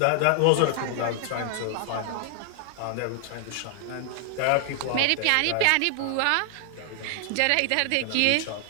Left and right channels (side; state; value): both; different; correlation 0.00